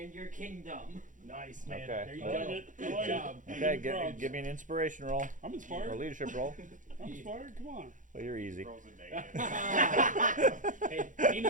your kingdom. Nice, man. Okay. There you I like go. it. I Good like job. it. Okay, Give me props. give me an inspiration roll. I'm Or inspired. leadership roll. I'm inspired. Come on. Well, you're easy. Rolls a negative. Hey, he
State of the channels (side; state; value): left; late; 0.37 ms